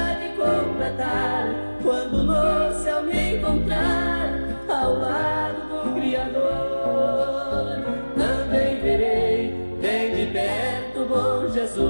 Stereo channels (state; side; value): inverted; both; correlation -1.00